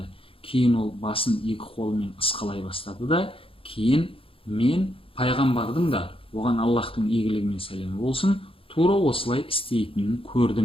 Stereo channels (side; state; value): right; late; 0.26 ms